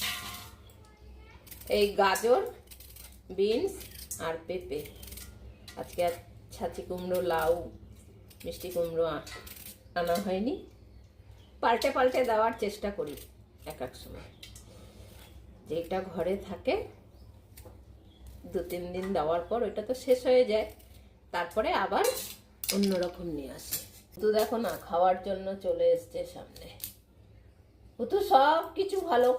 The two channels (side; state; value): both; identical; correlation 1.00